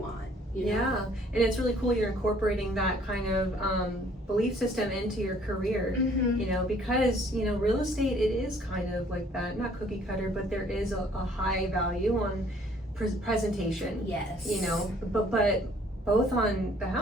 You know? Yeah, and it's really cool you're incorporating that kind of belief system into your career, you know, because, you know, real estate, it is kind of like that, not cookie cutter, but there is a high value on presentation. Yes. You know, but both on the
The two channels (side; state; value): both; normal; correlation 0.59